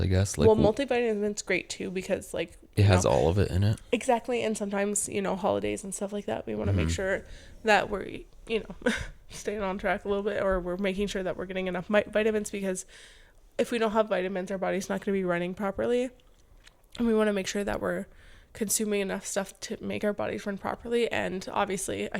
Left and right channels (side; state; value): both; identical; correlation 1.00